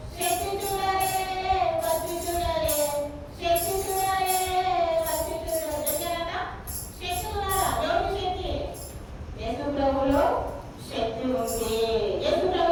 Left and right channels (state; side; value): identical; both; correlation 1.00